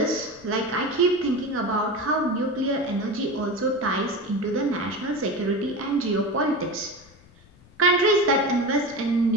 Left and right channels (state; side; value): noise; left; rumble, 26 dB below the sound